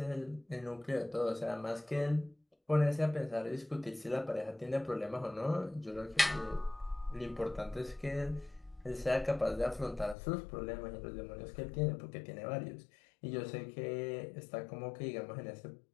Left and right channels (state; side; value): drops out; right; at 10.2 s